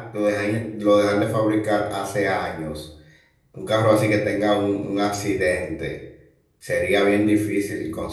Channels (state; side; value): identical; both; correlation 1.00